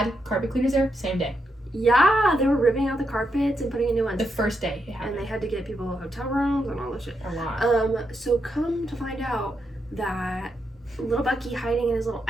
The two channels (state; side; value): normal; both; correlation 0.82